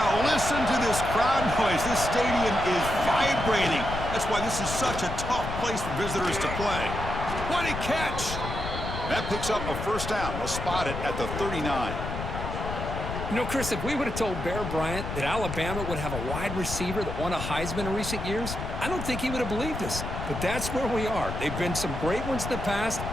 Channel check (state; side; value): noise; left; rumble, 6 dB below the sound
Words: listen to this crowd noise. This stadium is vibrating. That's why this is such a tough place for visitors to play. What a catch! That picks up a first down. We'll spot it at the 39. You know, Chris, if we would have told Bear Bryant that Alabama would have a wide receiver that won a Heisman in recent years, I don't think he would have believed us. But that's where we are. They've been some great ones in the past,